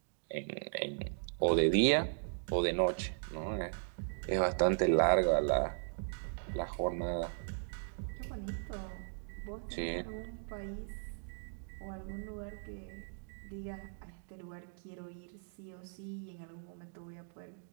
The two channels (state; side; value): silent; left; digital silence